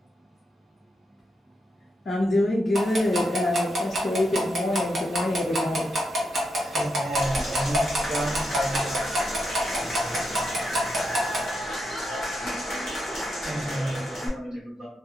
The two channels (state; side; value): normal; both; correlation 0.84